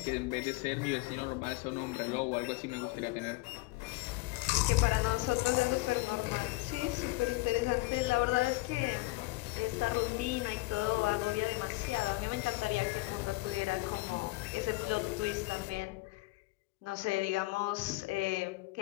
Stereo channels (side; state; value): right; quieter; 22.3 dB